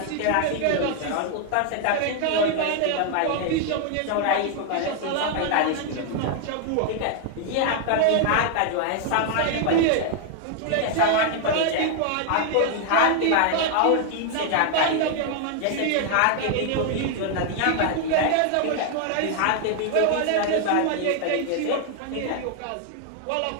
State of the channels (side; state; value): both; different; correlation 0.00